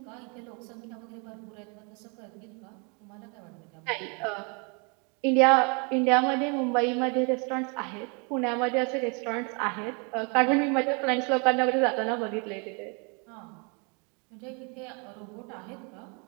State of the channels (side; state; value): left; quieter; 34.3 dB